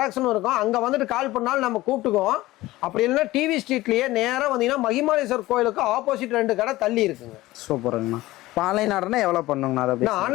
இருக்கும், அங்க வந்துட்டு கால் பண்ணாலும் நம்ம கூப்பிட்டுக்குவோம். அப்படி இல்லைன்னா டிவி ஸ்ட்ரீட்லயே நேரா வந்தீங்கன்னா மகிமாலேஸ்வர் கோயிலுக்கு ஆப்போசிட் 2 கடை தள்ளி இருக்குங்க. சூப்பருங்கண்ணா. இப்போ ஆன்லைன் ஆர்டர்னா எவ்வளோ பண்ணுங்கண்ணா? அதை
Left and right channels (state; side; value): quieter; right; 17.9 dB